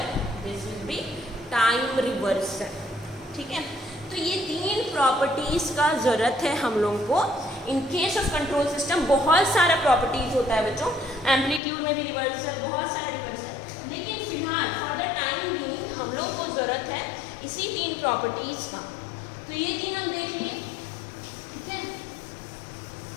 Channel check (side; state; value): right; drops out; at 11.6 s